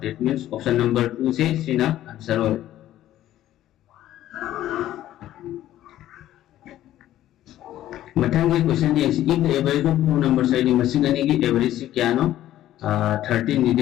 that means option number 2 से सीधा आंसर हो मथंगे क्वेश्चन ये if the average of two numbers है दी मसिंग अने की एवरेज से क्या नो 13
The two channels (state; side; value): quieter; right; 13.2 dB